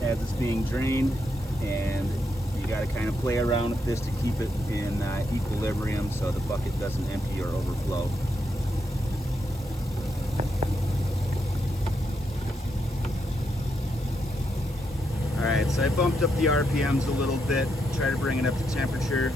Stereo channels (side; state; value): both; normal; correlation 0.81